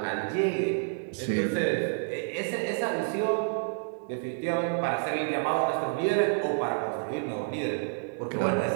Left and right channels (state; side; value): silent; left; digital silence